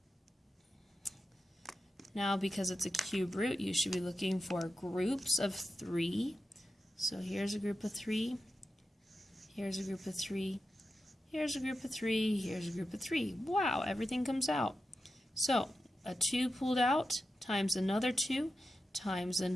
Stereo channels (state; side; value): normal; both; correlation 0.90